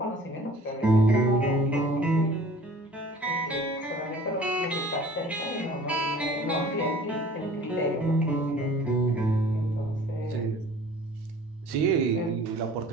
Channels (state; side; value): normal; both; correlation 0.48